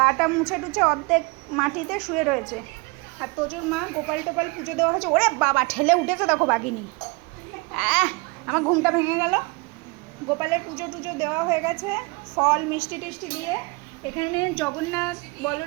মুছে টুছে অর্ধেক মাটিতে শুয়ে রয়েছে। আর তোজোর মা গোপাল টোপাল পুজো দেওয়া হয়েছে। ওরে বাবা, ঠেলে উঠেছে দেখো বাঘিনী। আমার ঘুমটা ভেঙে গেল। গোপালের পুজো টুজো দেওয়া হয়ে গেছে, ফল মিষ্টি টিষ্টি দিয়ে। এখানে জগন্নাথ,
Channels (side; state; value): left; quieter; 27.6 dB